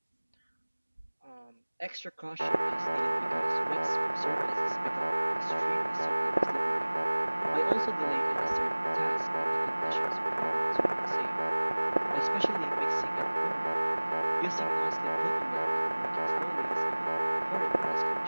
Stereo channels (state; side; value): inverted; both; correlation -1.00